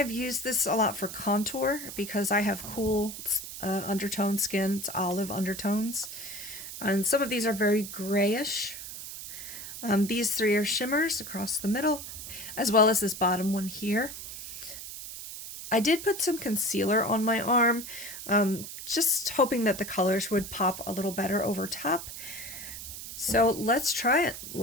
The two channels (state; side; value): noise; right; hiss, 10 dB below the sound